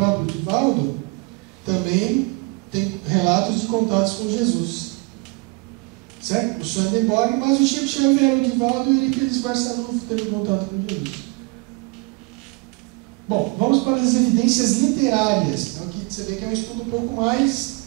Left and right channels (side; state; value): left; quieter; 28.6 dB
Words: Divaldo também têm relatos de contatos com Jesus. Certo? O Swedenborg, mas o Chico Xavier, o Divaldo e o Eurípides Barçanufo teve contato com Jesus. Bom, vamos para as evidências literárias. Então, aqui você vê que é um estudo um pouco mais